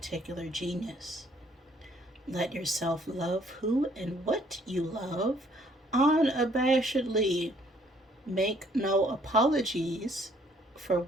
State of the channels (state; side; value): normal; both; correlation 0.63